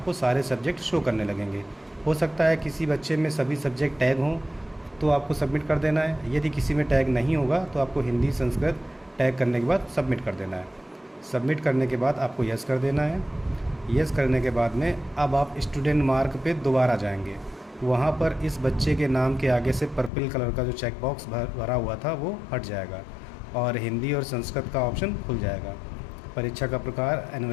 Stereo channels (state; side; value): drops out; right; at 20.1 s